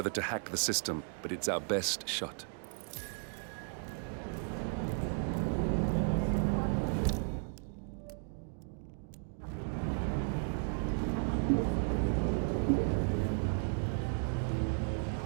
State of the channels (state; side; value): silent; left; 55 dB below the other